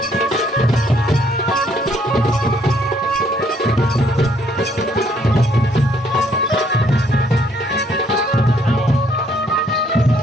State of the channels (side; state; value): both; normal; correlation 0.67